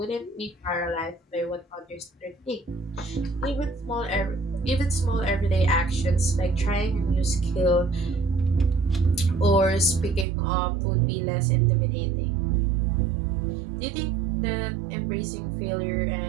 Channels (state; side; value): drops out; left; at 10.2 s